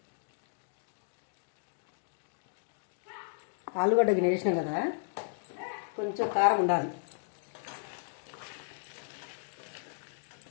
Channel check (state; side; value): silent; right; digital silence